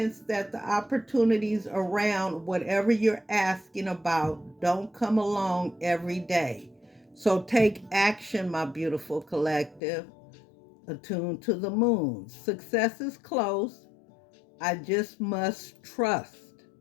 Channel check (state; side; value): drops out; right; at 9.8 s